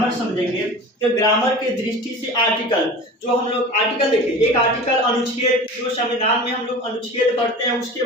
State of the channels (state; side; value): normal; both; correlation 0.36